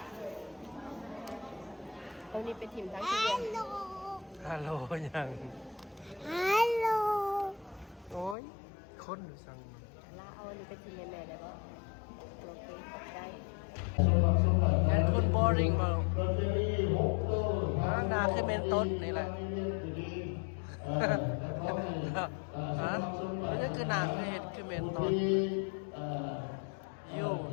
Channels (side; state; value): right; drops out; at 8.3 s